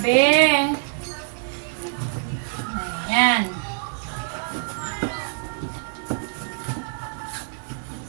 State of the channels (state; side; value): silent; left; digital silence